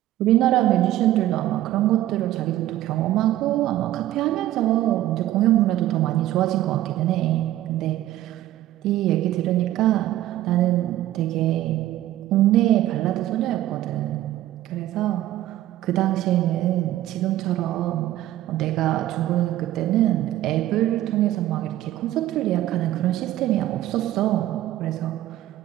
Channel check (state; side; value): quieter; left; 14.0 dB